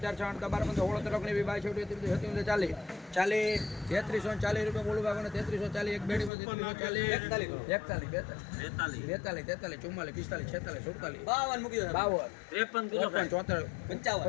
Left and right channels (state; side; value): drops out; right; at 6.3 s